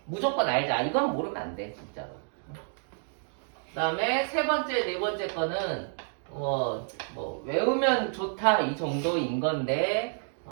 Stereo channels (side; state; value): left; silent; digital silence